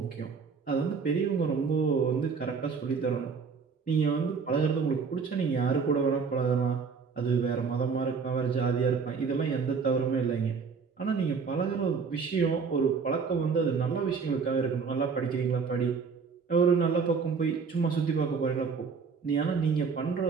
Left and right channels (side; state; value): left; quieter; 5.4 dB